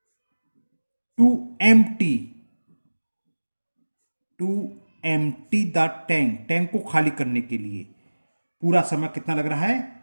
to empty, to empty the tank, tank को खाली करने के लिए पूरा समय कितना लग रहा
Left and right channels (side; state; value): both; inverted; correlation -1.00